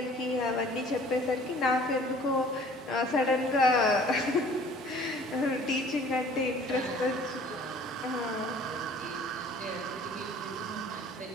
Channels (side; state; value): both; normal; correlation 0.51